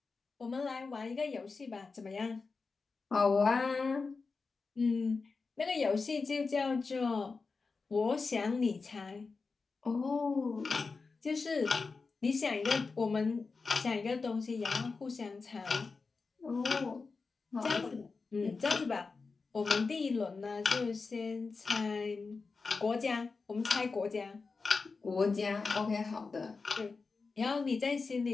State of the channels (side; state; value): right; quieter; 4.4 dB